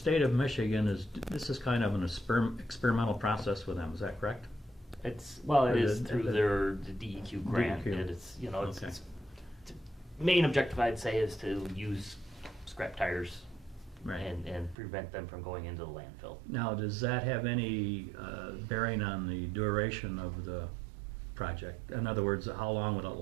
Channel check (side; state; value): left; drops out; at 14.8 s